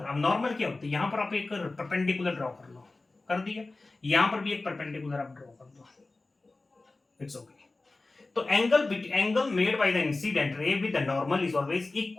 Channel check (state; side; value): quieter; right; 3.3 dB